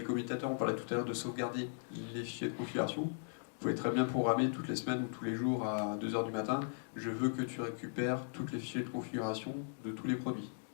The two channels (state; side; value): silent; right; digital silence